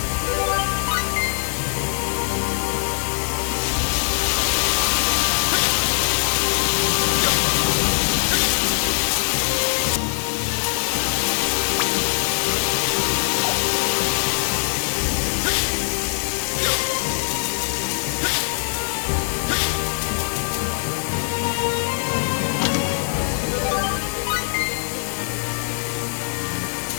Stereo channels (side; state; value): right; silent; digital silence